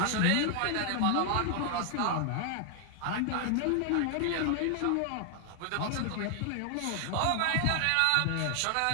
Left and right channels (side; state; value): both; different; correlation 0.00